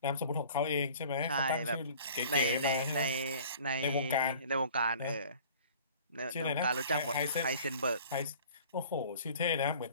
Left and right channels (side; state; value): both; inverted; correlation -0.48